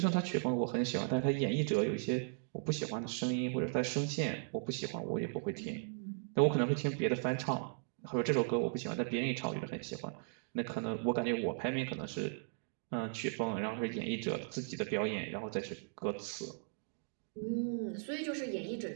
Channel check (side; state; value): left; silent; digital silence